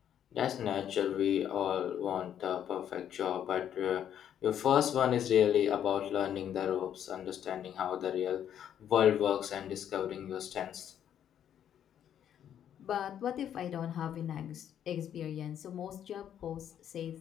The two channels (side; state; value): right; quieter; 9.8 dB